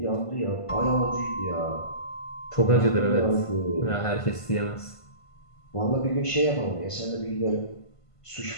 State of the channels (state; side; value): late; right; 1.5 ms